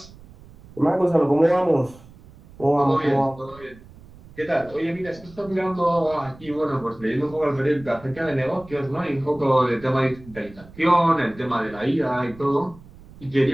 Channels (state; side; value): noise; right; rumble, 21 dB below the sound